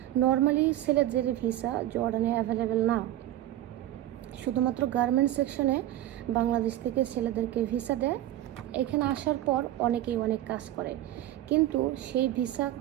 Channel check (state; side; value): quieter; left; 13.7 dB